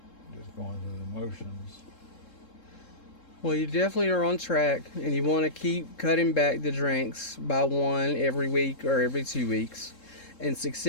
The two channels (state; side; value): late; right; 3.7 ms